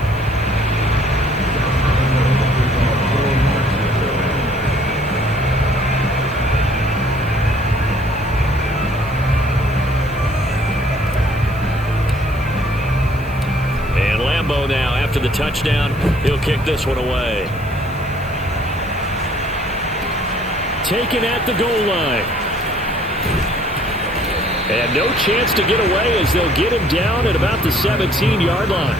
after the touchdown. He'll kick this one away. Taken at the goal line. And no chance to get away as they'll get him down at about the 17-yard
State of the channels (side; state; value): right; noise; hiss, 25 dB below the sound